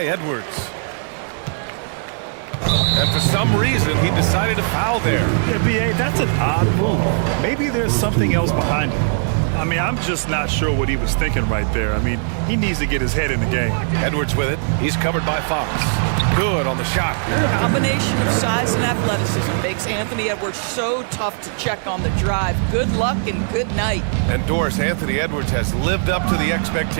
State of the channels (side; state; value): left; silent; digital silence